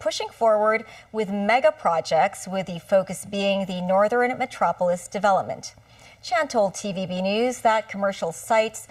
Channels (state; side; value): identical; both; correlation 1.00